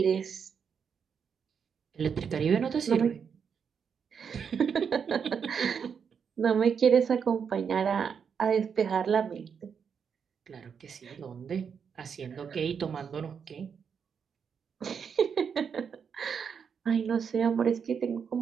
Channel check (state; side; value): quieter; left; 6.8 dB